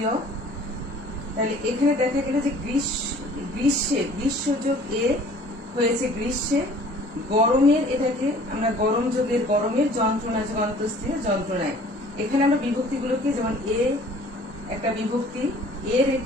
তাহলে এখানে দেখা গেল যে গ্রীষ্ম যোগ এ হয়েছে গ্রীষ্মে, গরমের এটাকে আমরা গরম যোগের গরমের, যন্ত্রণা যোগ অন্তঃস্থীয় যন্ত্রণায়। এখানে আমরা বিভক্তিগুলোকে, যেমন এ একটা বিভক্তি, এর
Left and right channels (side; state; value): both; normal; correlation 0.51